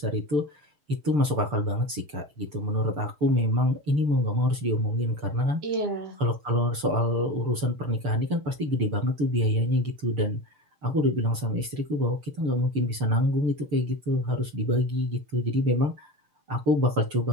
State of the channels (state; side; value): late; left; 6.8 ms